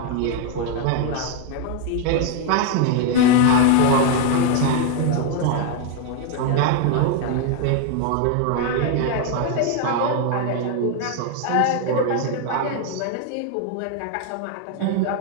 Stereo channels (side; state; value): both; different; correlation 0.01